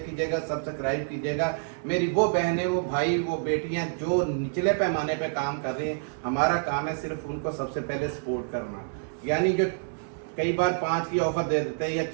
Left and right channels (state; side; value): silent; left; digital silence